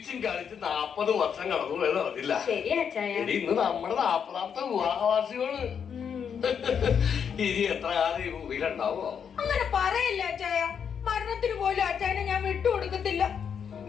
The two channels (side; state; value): right; quieter; 7.4 dB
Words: കളിച്ച് 40 വർഷം കടന്നു പോയത് അറിഞ്ഞില്ല. ഇന്ന് നമ്മുടെ 40ാമത്തെ വിവാഹവാസികള്. ഇനി എത്ര കാലം ഈ ഭൂമിയിലുണ്ടാവോ? അങ്ങനെ പറയല്ല അച്ചായ. മരണത്തിന് പോലും അച്ചായനെ ഞാൻ വിട്ടുകൊടുക്കത്തില്ല.